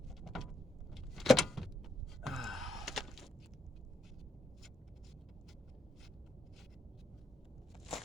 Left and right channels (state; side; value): normal; both; correlation 0.79